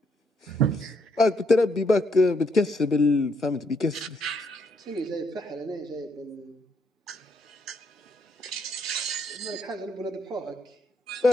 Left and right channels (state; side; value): normal; both; correlation 0.73